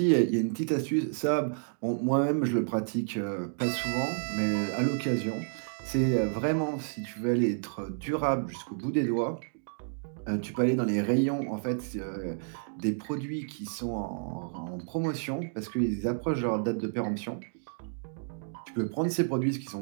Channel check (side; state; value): left; silent; digital silence